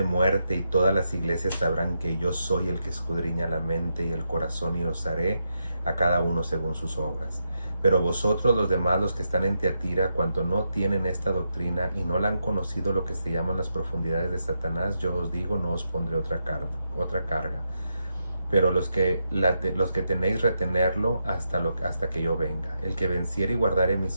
muerte, y todas las iglesias sabrán que yo soy el que escudriña la mente y el corazón, y os haré a cada uno según sus obras. Pero vosotros los demás, los que están en Tiatira, cuanto no tienen esta doctrina y no la han conocido, lo que se llaman las profundidades de Satanás, yo os digo, no os pondré otra carga. pero los que tenéis, retenerlo hasta que yo venga. El que venciere y guardare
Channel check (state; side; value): inverted; both; correlation -0.83